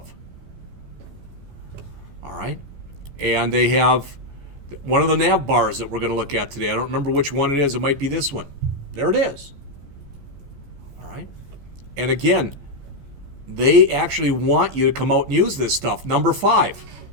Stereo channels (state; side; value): late; left; 14 ms